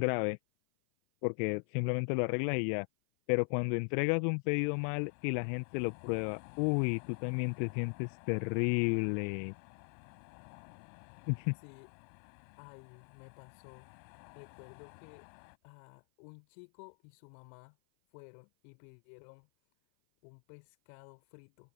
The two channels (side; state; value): right; silent; 52 dB below the other